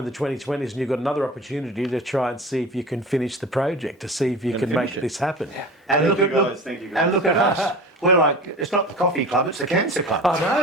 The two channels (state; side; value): normal; both; correlation 0.36